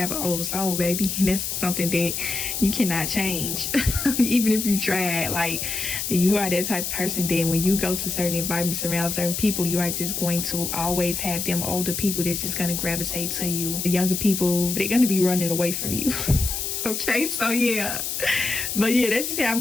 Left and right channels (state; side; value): noise; left; hiss, 3 dB below the sound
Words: an old soul, baby, and that's something that you cannot change. Even if you try. Like, you are that type of person that when you go to certain environments around certain people, you are just going to always have them older people that's just going to gravitate to you. The younger people, they're going to be running away from you. Okay, so yeah, but yeah, that's just how I'm